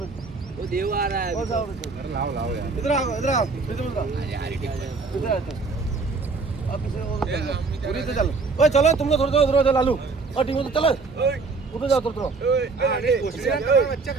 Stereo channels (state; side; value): quieter; left; 4.2 dB